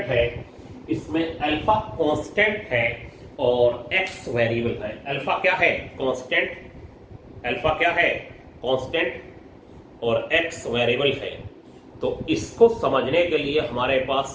है इसमें अल्फा कांस्टेंट है और एक्स वेरिएबल है। अल्फा क्या है, कांस्टेंट, अल्फा क्या है कांस्टेंट और एक्स वेरिएबल है। तो इसको समझने के लिए हमारे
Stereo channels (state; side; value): identical; both; correlation 1.00